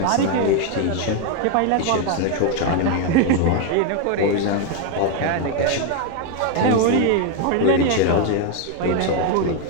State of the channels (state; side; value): different; both; correlation 0.01